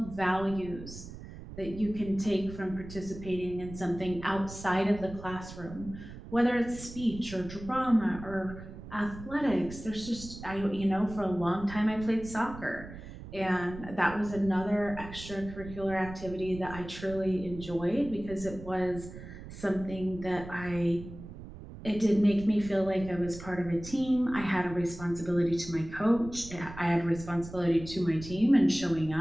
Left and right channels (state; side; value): noise; right; rumble, 13 dB below the sound